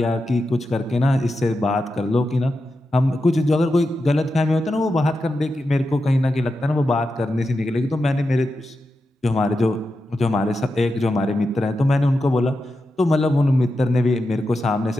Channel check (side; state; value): both; normal; correlation 0.89